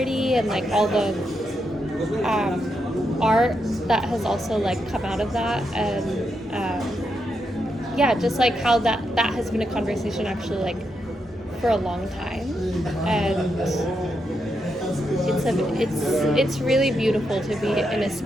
and like all the art that has also like come out of that, and yeah, just like how that has been a conversation actually like for a long time, and it's really beautiful to be in a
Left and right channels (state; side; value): normal; both; correlation 0.83